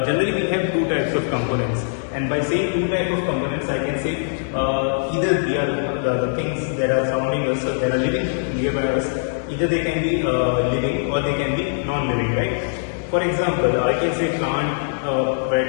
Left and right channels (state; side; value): silent; right; digital silence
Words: Generally we have two types of components, and by saying two types of components, I can say either they are the things that are surrounding us, that are living nearby us, either they can be living or they can be non-living, right? For example, I can say